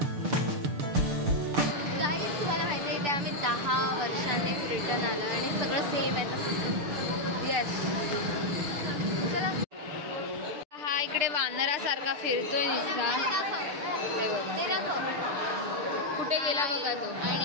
तुम्हाला माहिती आहे, ते आम्ही 10 वर्षांनी रिटर्न आलो आणि सगळं सेम आहे तसंच. येस, चला. हा इकडे वानरासारखा फिरतोय नुसता. हे बघा कुठे गेला बघा तो.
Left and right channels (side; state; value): left; late; 6.7 ms